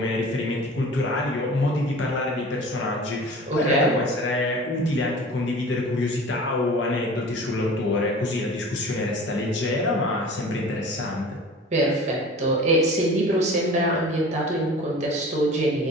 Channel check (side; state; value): both; normal; correlation 0.41